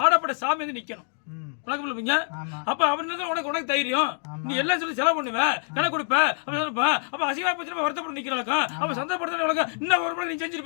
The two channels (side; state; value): right; silent; digital silence